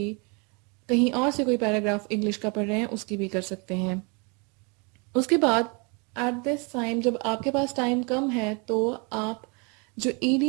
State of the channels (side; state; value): left; quieter; 32.4 dB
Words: کہیں اور سے کوئی پیراگراف انگلش کا پڑھ رہے ہیں اس کی بھی کر سکتے ہیں۔ اس کے بعد ایٹ دس ٹائم جب آپ کے پاس ٹائم کم ہے تو آپ جو